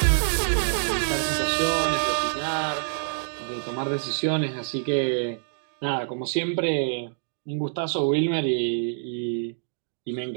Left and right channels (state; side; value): silent; left; digital silence